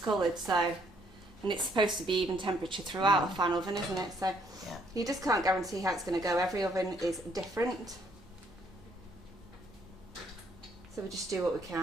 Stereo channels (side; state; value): both; normal; correlation 0.68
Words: So, and it's supposed to be even temperature throughout a fan oven, isn't it? So Yeah. you just can't guarantee how it's going to go. Every oven is different. So we just do what we